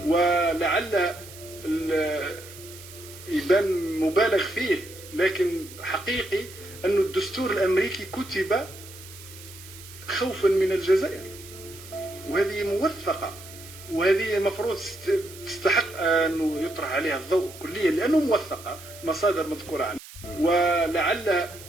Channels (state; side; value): noise; right; hiss, 17 dB below the sound